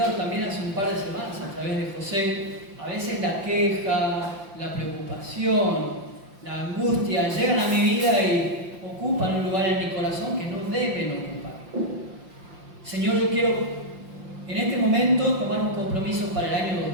también hace un par de semanas a través de José, a veces la queja, la preocupación, la angustia llegan a mi vida y ocupan un lugar en mi corazón que no deben ocupar. Señor, yo quiero en este momento tomar un compromiso para el año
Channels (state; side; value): late; left; 5.7 ms